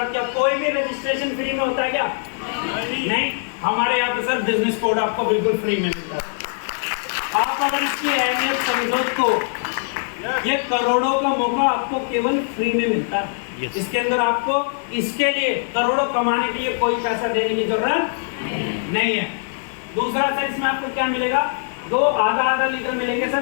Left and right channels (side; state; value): right; silent; 64 dB below the other